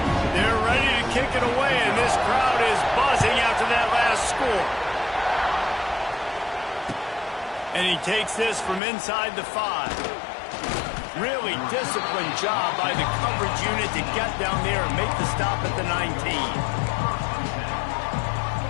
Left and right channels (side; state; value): right; drops out; at 8.8 s